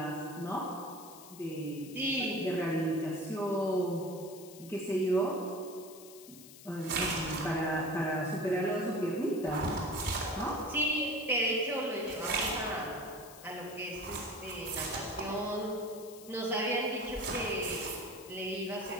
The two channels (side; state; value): left; noise; hiss, 17 dB below the sound